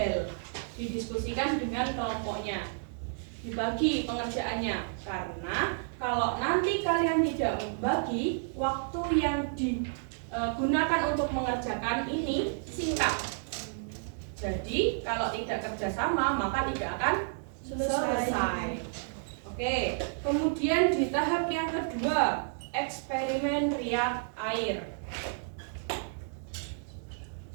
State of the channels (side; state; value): left; silent; 57 dB below the other